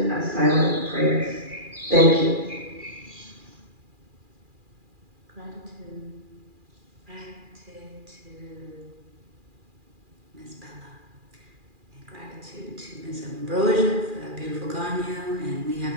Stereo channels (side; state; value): left; late; 2.4 ms